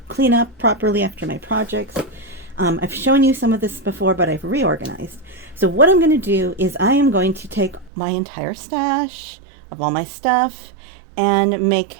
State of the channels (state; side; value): drops out; left; at 7.9 s